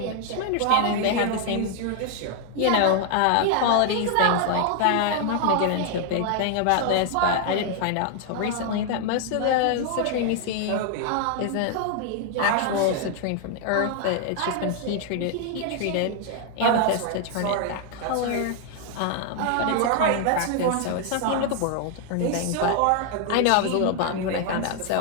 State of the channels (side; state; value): both; different; correlation 0.00